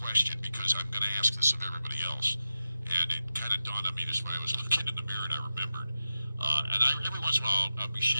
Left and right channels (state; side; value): inverted; both; correlation -0.92